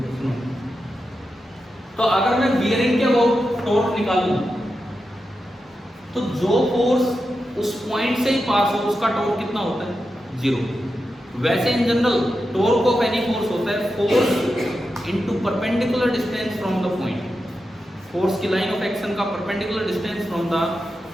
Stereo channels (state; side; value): normal; both; correlation 0.89